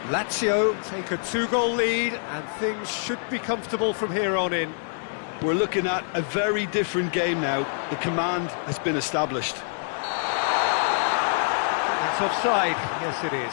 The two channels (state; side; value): silent; right; digital silence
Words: Lazio take a 2-goal lead, and things should be comfortable from here on in. We're looking at a very different game now. The command has been established. It's offside. Yes, it is.